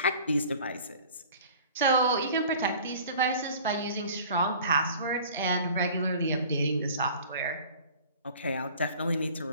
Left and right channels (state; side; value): inverted; both; correlation -0.46